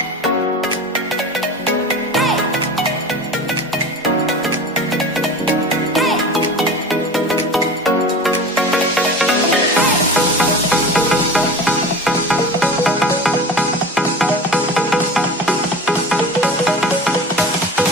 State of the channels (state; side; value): normal; both; correlation 0.34